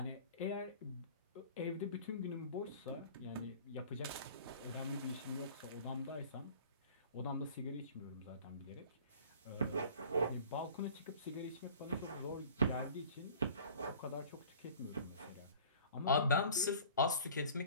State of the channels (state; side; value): inverted; both; correlation -0.46